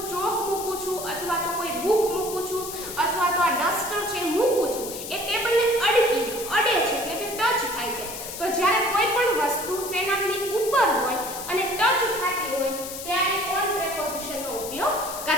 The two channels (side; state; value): left; noise; hiss, 9 dB below the sound